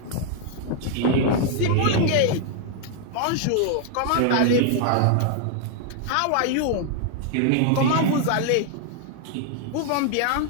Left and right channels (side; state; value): both; different; correlation 0.00